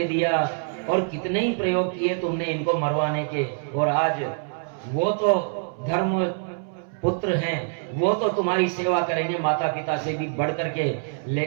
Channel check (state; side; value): silent; left; 62 dB below the other